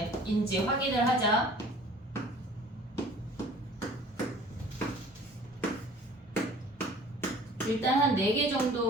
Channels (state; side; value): normal; both; correlation 0.49